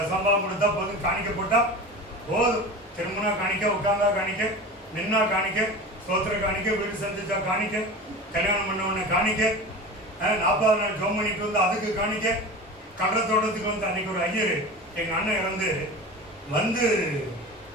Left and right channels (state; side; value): normal; both; correlation 0.32